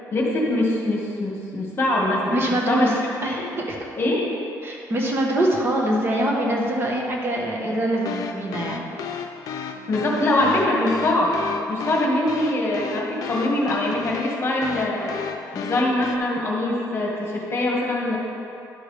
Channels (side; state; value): both; normal; correlation 0.68